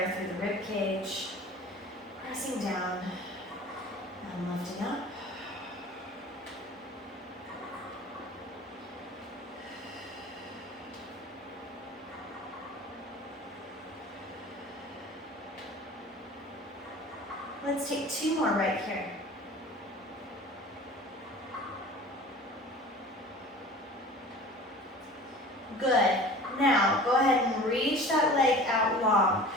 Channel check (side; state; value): both; normal; correlation 0.41